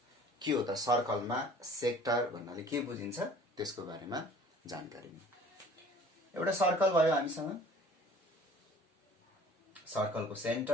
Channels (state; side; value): normal; both; correlation 0.50